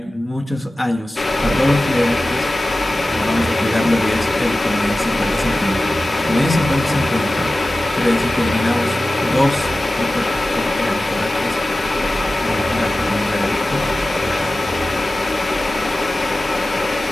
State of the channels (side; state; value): both; normal; correlation 0.96